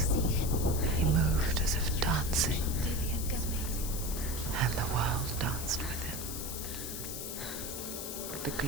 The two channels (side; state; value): left; noise; hiss, 6 dB below the sound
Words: See him. he moved as if dancing, Dillian goes waiting. and the world danced with him. The